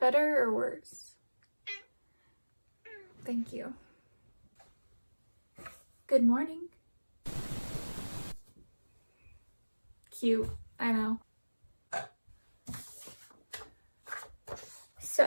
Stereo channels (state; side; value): inverted; both; correlation -1.00